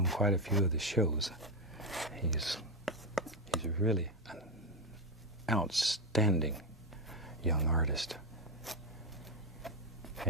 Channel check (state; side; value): normal; both; correlation 0.08